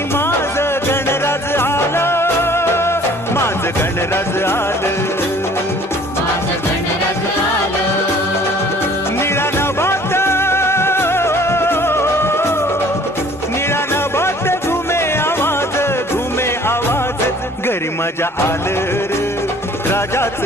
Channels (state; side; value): normal; both; correlation 0.53